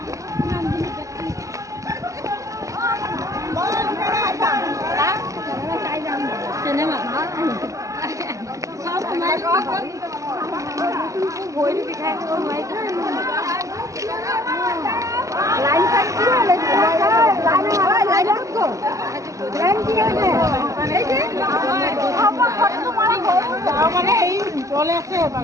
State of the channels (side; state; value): left; late; 0.16 ms